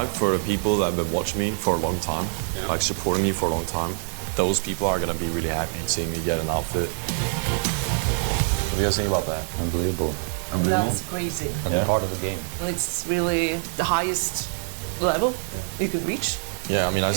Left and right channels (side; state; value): left; silent; digital silence